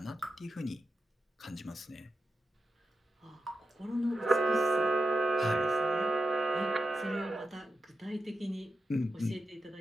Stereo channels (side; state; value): both; normal; correlation 0.88